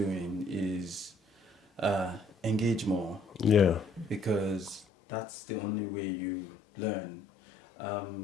is engage more, Yeah. because that's the only way you learn. I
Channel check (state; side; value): drops out; right; at 4.9 s